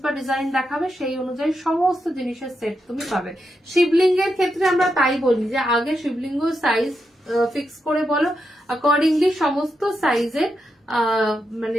বা ডিজাইন দেখাবে, সেই অনুযায়ী সমস্ত জিনিসের সেট তুমি পাবে। শিবলিঙ্গের ক্ষেত্রে আমরা তাই বলি যে আগে শিবলিঙ্গ সাইজ ফিক্স করে বলো, অ্যাকর্ডিংলি সমস্ত সাইজের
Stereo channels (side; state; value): both; normal; correlation 0.85